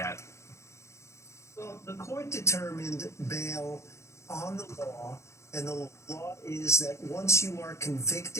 Well, the court determined bail on the law, and the law is that once you are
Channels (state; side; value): late; right; 0.14 ms